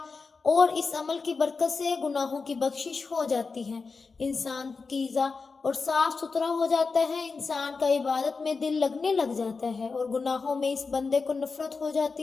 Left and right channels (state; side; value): quieter; right; 4.5 dB